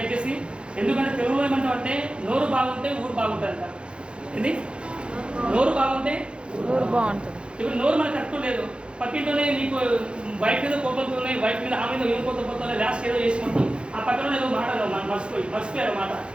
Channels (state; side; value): late; left; 0.056 ms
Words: ఎందుకంటే తెలుగులో ఏమంటామంటే నోరు బాగుంటే ఊరు బాగుంటుందంట. ఏంది? నోరు బాగుంటే ఊరు బాగుంటుంది. ఇప్పుడు నోరు మనకు కరెక్ట్ లేదు, పక్కింటోనే నీకు వైఫ్ మీద కోపంతోనే, వైఫ్ మీద ఆమె మీద ఏం కోపంతోనే లాస్ట్ ఏదో చేసుకుంటాం. ఆ పక్కన ఏదో మాటలు మర్చిపోయారు మాట,